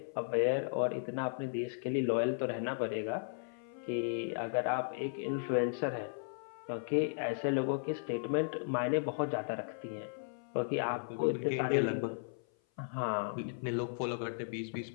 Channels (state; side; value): silent; right; 54 dB below the other